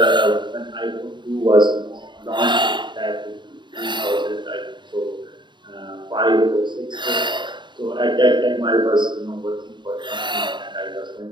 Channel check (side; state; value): left; late; 0.22 ms